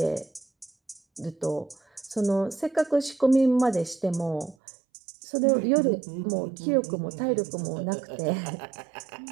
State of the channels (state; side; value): drops out; left; at 4.5 s